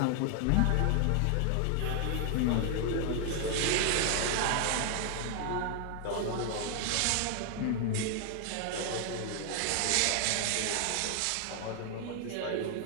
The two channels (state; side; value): different; both; correlation 0.00